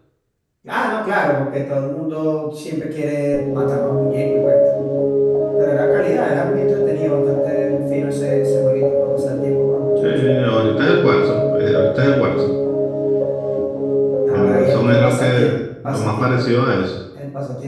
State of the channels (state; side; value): identical; both; correlation 1.00